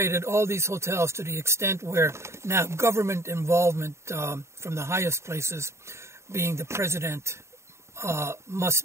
all these hotels to the extent where now government involvement from the highest places, being the president,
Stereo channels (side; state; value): left; late; 0.13 ms